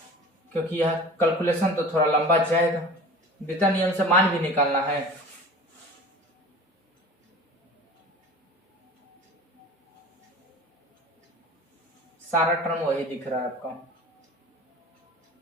क्योंकि यह कैलकुलेशन तो थोड़ा लंबा जाएगा, वितरण नियम से मान भी निकालना है। सारा टर्म वही दिख रहा है आपका,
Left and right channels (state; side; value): normal; both; correlation 0.39